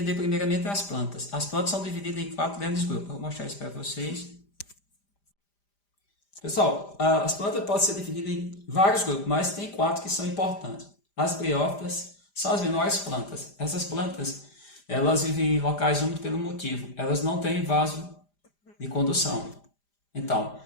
primeiramente as plantas. As plantas são divididas em 4 grandes grupos, eu vou mostrar isso para vocês. Pessoal, as plantas podem ser divididas em vários grupos, mas tem 4 que são importantes. As briófitas são as menores plantas. Essas plantas, elas vivem em locais úmidos pelo motivo, elas não têm vaso de condução. Então,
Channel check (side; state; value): right; late; 5.0 ms